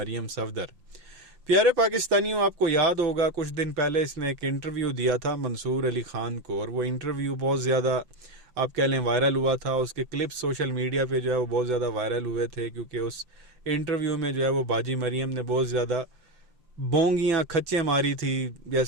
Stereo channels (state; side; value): late; left; 5.5 ms